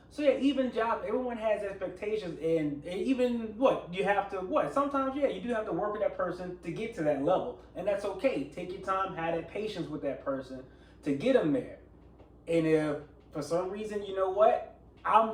So yeah, even jobs, everyone has expectations, and even sometimes you do have to work with that person to get to that level, and that's okay. Take your time, have that patience with that person to get them there. And if for some reason, you know what, I'm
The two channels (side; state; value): both; identical; correlation 1.00